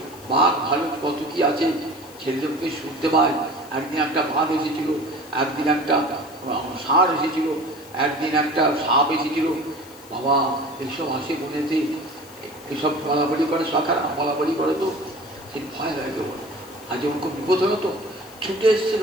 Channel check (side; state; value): left; noise; hiss, 22 dB below the sound